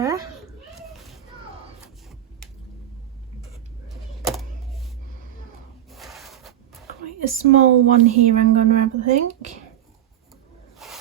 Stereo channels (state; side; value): quieter; left; 11.8 dB